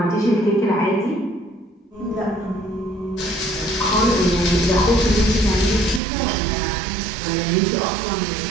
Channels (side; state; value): left; drops out; at 6.0 s